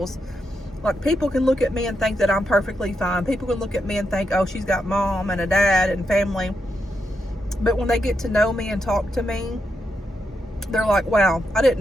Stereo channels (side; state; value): both; normal; correlation 0.83